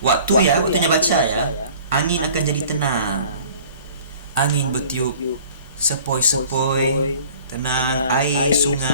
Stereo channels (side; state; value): both; inverted; correlation -0.49